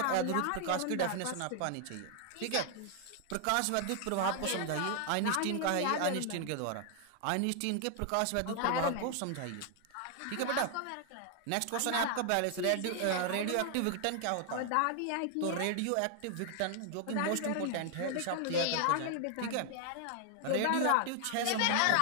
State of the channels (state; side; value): different; both; correlation 0.00